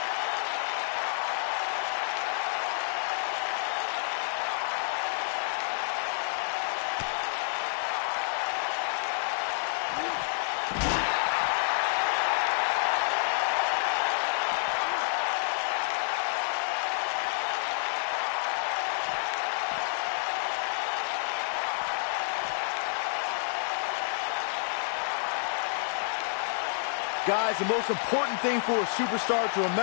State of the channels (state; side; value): silent; right; digital silence